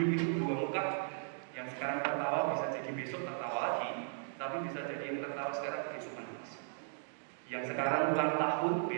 itu dua muka. Yang sekarang tertawa bisa jadi besok tertawa lagi, tapi bisa jadi yang tertawa sekarang besok menangis. Yang sekarang ulang tahun,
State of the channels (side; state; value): left; silent; digital silence